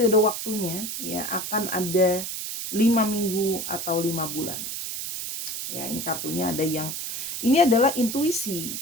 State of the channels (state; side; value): noise; right; hiss, 5 dB below the sound